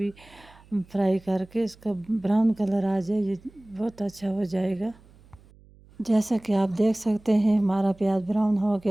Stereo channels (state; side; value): noise; right; hum, 26 dB below the sound